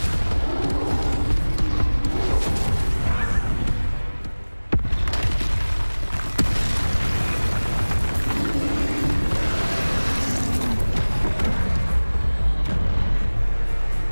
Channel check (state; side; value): inverted; both; correlation -1.00